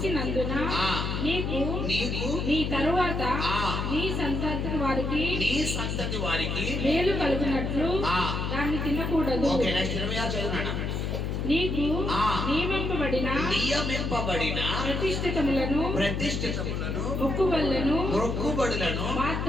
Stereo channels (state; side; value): noise; left; hum, 2 dB below the sound